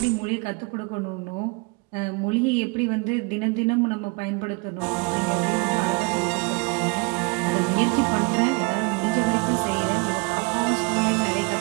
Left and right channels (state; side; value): quieter; left; 30.3 dB